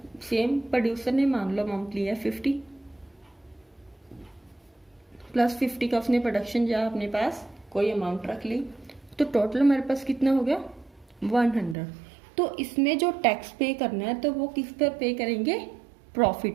सेम प्रोड्यूसर ने मान लो अमाउंट लिया 50 प्लस 50 का उसने प्रोडक्शन या अपने पास कोई अमाउंट रख ली, तो टोटल हमारे पास कितना हो गया 100। तो इसमें जो टैक्स पे करना है तो वो किस पर पे करेंगे, प्रॉफिट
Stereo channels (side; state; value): left; drops out; at 11.8 s